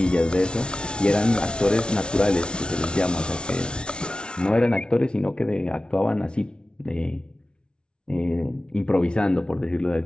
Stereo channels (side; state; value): right; late; 0.056 ms